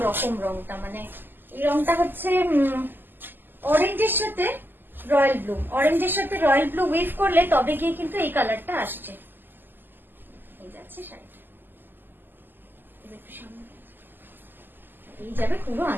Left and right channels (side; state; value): left; late; 0.092 ms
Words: রকম রংটা। মানে এই রংটা হচ্ছে অরেঞ্জের সাথে রয়্যাল ব্লু, অরেঞ্জের সাথে রয়্যাল ব্লু উইভ করলে তবে গিয়ে কিন্তু এই কালারটা আসছে। এই যাচ্ছে শাড়িটা, এই যাবে পুরো